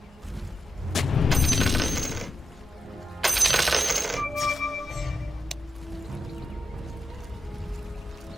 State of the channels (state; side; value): normal; both; correlation 0.90